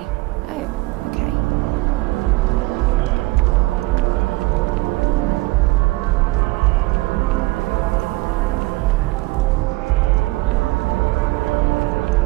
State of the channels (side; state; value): left; quieter; 21.0 dB